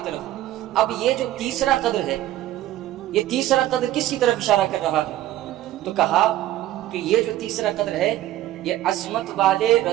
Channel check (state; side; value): quieter; left; 14.0 dB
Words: طرف۔ اب یہ جو تیسرا قدر ہے، یہ تیسرا قدر کس کی طرف اشارہ کر رہا ہے؟ تو کہا کہ یہ جو تیسرا قدر ہے یہ عظمت والے